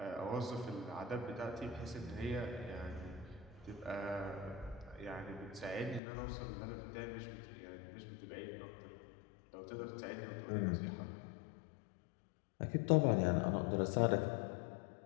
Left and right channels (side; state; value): right; drops out; at 6.0 s